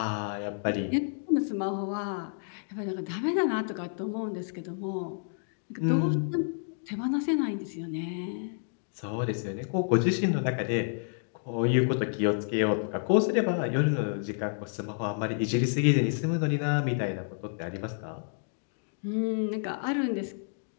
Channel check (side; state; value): right; silent; digital silence